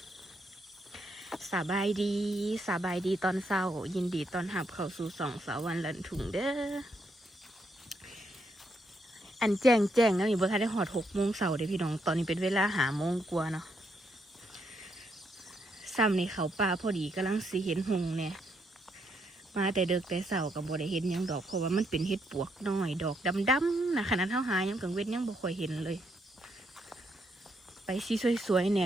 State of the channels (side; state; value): both; normal; correlation 0.76